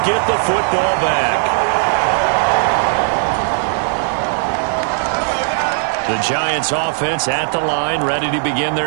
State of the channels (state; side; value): silent; left; 61 dB below the other